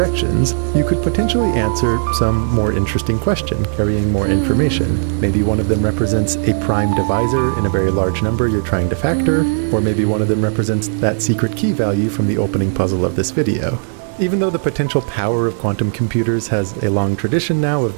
you could potentially answer some more interesting question, carrying more information. Maybe one of them represents a prime divisor in a very large number you're trying to factor, or maybe one of them represents that secret key value from the opening puzzle of this video. Even though the potential power of quantum computers has a long tradition now of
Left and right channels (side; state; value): left; silent; 68 dB below the other